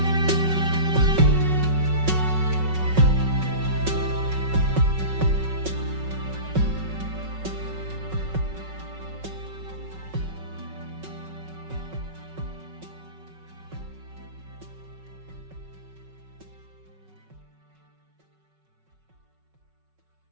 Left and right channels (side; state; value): left; late; 5.3 ms